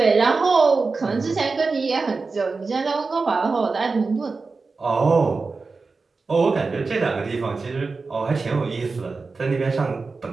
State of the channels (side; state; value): left; quieter; 4.2 dB